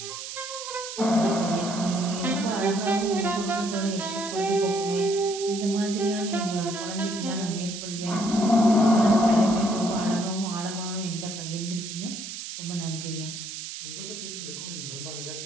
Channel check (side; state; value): right; noise; hiss, 9 dB below the sound